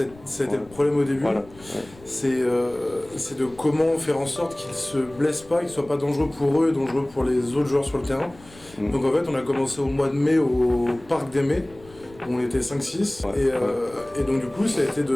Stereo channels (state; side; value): noise; left; rumble, 23 dB below the sound